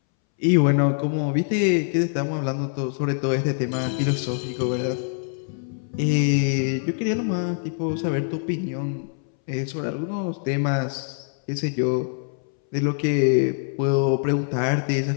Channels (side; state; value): right; silent; 63 dB below the other